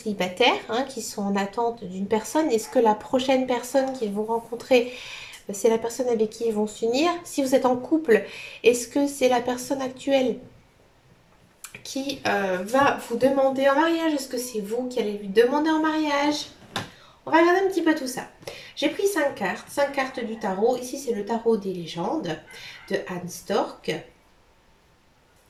qui sont en attente d'une personne. Est-ce que la prochaine personne qu'ils vont rencontrer, c'est la personne avec qui ils vont s'unir? Si vous êtes en couple, est-ce que c'est la personne actuelle qui va vous demander en mariage? Est-ce que c'est vous qui allez lui demander en mariage? On va regarder un petit peu tout ça. J'ai pris 5 cartes du tarot. Ici, c'est le tarot des légendes de Anne Stork.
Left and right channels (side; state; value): both; identical; correlation 1.00